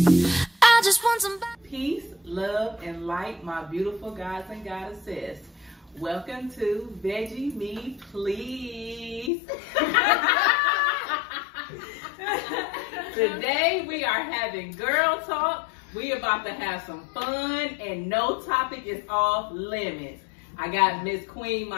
I just want some peace, love, and light, my beautiful gods and goddesses. Welcome to Veggie Me Please. Today we are having girl talk. We about to have some fun and no topic is off limits. I got Miss Queen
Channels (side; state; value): right; drops out; at 9.3 s